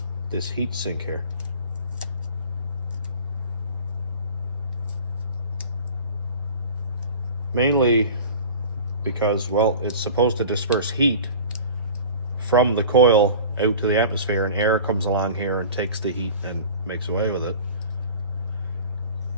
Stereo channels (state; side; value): inverted; both; correlation -0.39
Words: this heat sink here. Mainly because, well, it's supposed to disperse heat from the coil out to the atmosphere, and air comes along here and takes the heat and makes away with it.